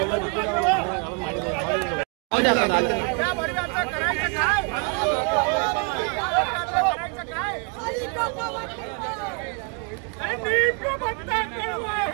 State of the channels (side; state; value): left; quieter; 35.6 dB